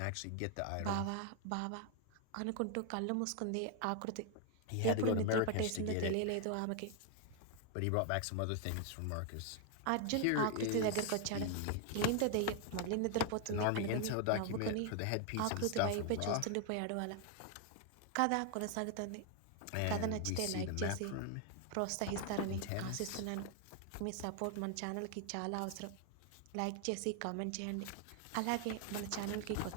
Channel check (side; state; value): both; different; correlation 0.00